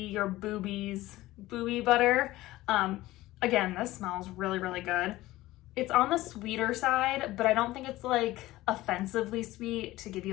Your Boobies Boobie Butter. Again, this smells really, really good. It's on the sweeter side, but I don't think it's like offensively sweet to give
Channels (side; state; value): right; quieter; 17.3 dB